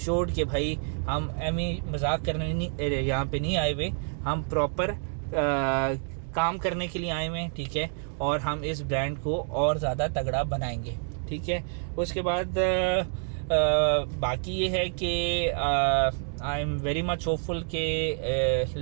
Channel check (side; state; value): left; silent; 59 dB below the other